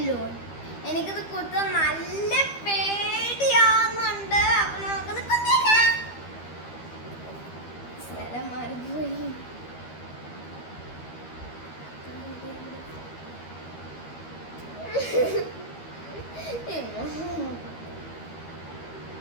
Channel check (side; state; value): right; late; 13 ms